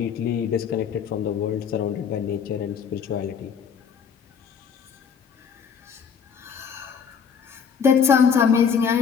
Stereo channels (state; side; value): quieter; right; 6.9 dB